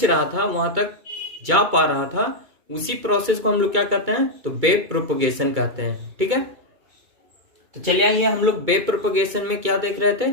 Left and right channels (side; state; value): left; late; 2.2 ms